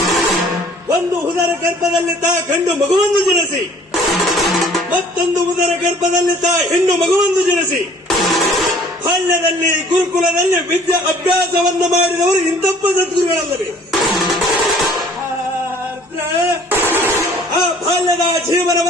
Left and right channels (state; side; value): normal; both; correlation 0.54